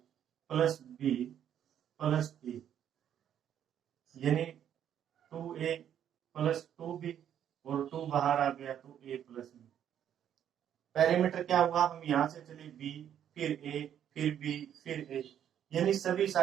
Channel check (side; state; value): left; quieter; 9.8 dB